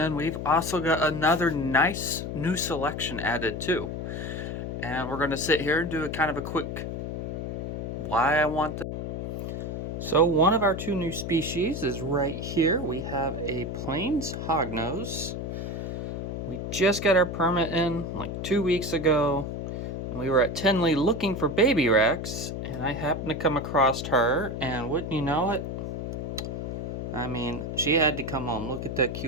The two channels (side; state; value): left; noise; hum, 4 dB below the sound